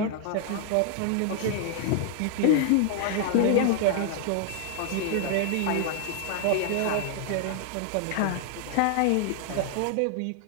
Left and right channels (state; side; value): different; both; correlation 0.00